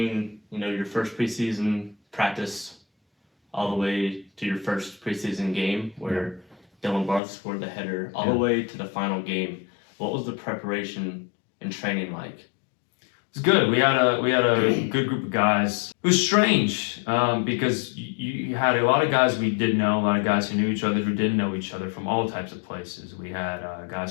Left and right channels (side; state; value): right; drops out; at 7.2 s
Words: your first preseason practice all the way to your first preseason game where Dylan Barth scored the header, all the way to the final game, what was the preparation and training like? It was good. We had a good group of guys. It was strange because you had a lot of guys we did know, a lot of guys who knew each other who didn't know each other from all types of places. We had